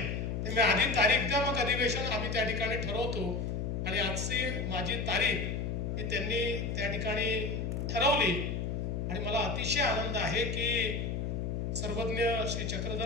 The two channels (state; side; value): noise; left; hum, 2 dB below the sound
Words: त्यामुळे आधी तारीख द्या, मग अधिवेशन आम्ही त्या ठिकाणी ठरवतो. आणि आजची माझी तारीख ही त्यांनी त्या ठिकाणी ठरवली आणि मला अतिशय आनंद आहे की सर्वज्ञ श्री